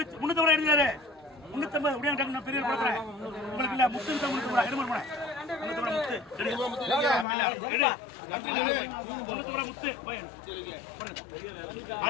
ரூபா எடுத்தாரு. 350 அப்படியே நான் பெரிய கொடுக்குறேன் உங்களுக்கு. இல்ல 350 ரூபா எடுமா போறேன். 350 ரூபா முத்து எடு 350 ரூபா முத்து போய்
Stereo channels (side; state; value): right; drops out; at 7.2 s